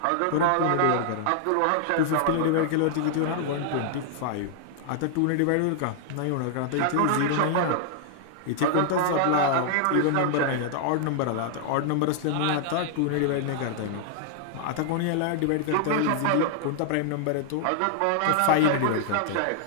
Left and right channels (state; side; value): different; both; correlation -0.01